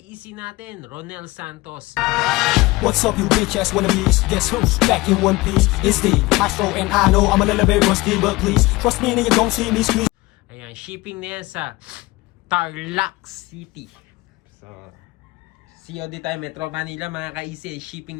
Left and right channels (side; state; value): right; quieter; 21.3 dB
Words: natin, Ronel Santos. What's up, you bitch ass wannabes? Guess who's back in one piece? It's the Astro, and I know I'm a little bit rusty, but please trust me and you don't see me squeeze. Ayan, shipping na yan sa Tarlac City. So, COD tayo, Metro Manila mga ka-easy,